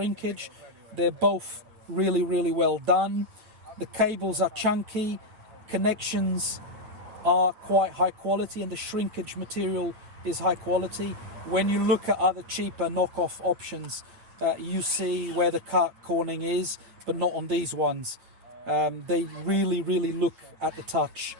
They're both really well done. The cables are chunky, connections are quite high quality, and the shrinkage material is high quality. When you look at other cheaper knockoff options, you see where the cut cornering is, but not on these ones. They really look at the touch.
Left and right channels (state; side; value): late; left; 9.6 ms